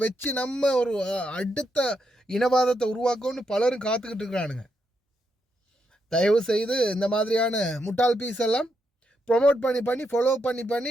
வச்சு நம்ம ஒரு அடுத்த இனவாதத்தை உருவாக்கணும்னு பலரும் காத்துக்கிட்டு இருக்கிறானுங்க. தயவு செய்து இந்த மாதிரியான முட்டாள் பீஸ் எல்லாம் ப்ரொமோட் பண்ணி ஃபாலோ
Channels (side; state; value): both; normal; correlation 0.81